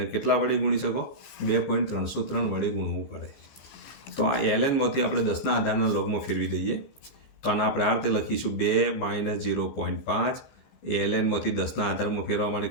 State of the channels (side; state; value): right; late; 15 ms